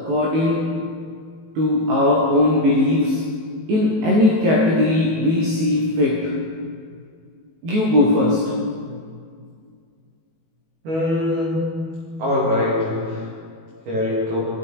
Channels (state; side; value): late; left; 19 ms